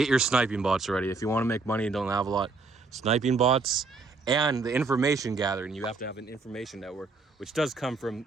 your sniping bots ready. If you want to make money and don't have a lot, sniping bots and the information gathering. You have to have an information network, which does come from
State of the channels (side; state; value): left; quieter; 4.0 dB